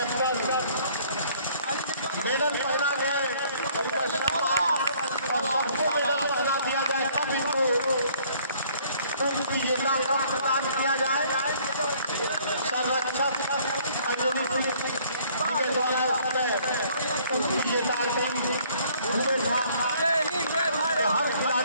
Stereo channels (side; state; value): both; inverted; correlation -0.59